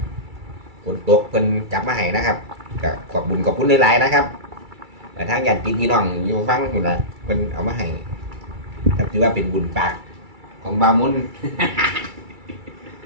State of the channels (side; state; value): left; late; 2.3 ms